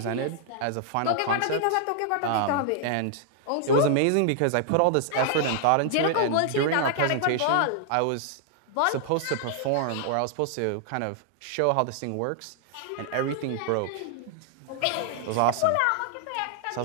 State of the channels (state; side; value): different; both; correlation -0.01